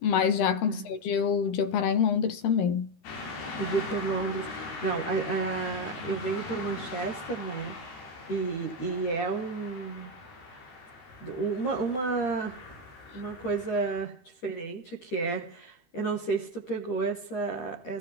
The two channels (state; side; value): late; right; 13 ms